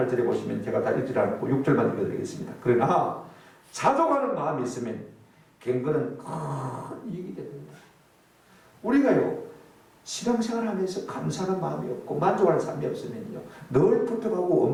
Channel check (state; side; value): identical; both; correlation 1.00